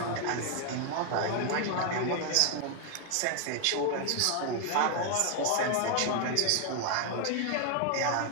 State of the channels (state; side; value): different; both; correlation 0.00